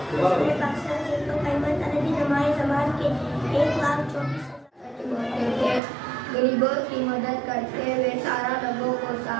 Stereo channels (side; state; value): left; drops out; at 5.8 s